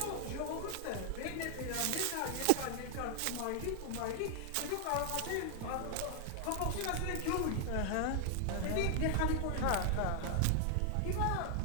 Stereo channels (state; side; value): different; both; correlation 0.00